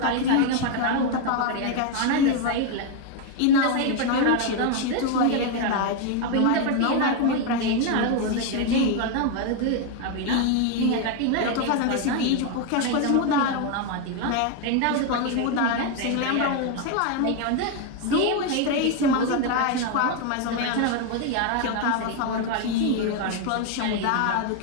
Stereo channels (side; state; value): both; different; correlation 0.01